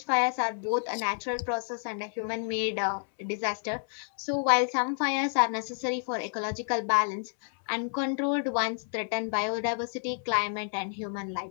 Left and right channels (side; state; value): right; silent; 58 dB below the other